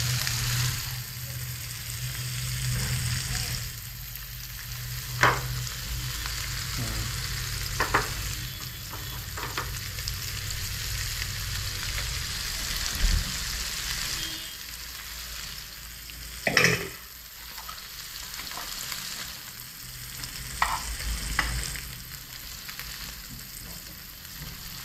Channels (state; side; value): identical; both; correlation 1.00